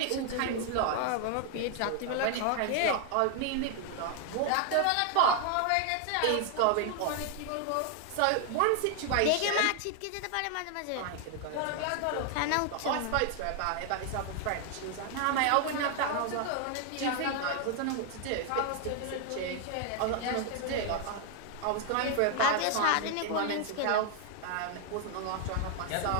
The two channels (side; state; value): both; different; correlation 0.00